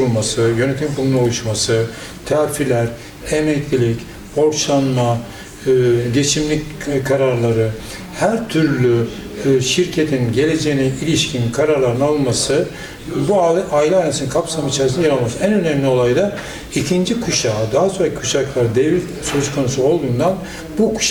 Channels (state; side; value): identical; both; correlation 1.00